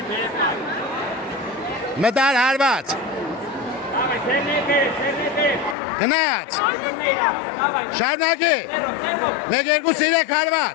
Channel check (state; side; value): drops out; right; at 5.8 s